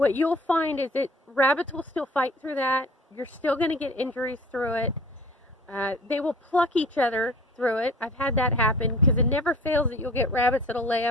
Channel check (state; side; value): normal; both; correlation 0.45